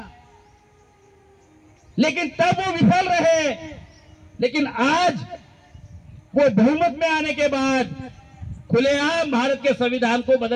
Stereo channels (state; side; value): identical; both; correlation 1.00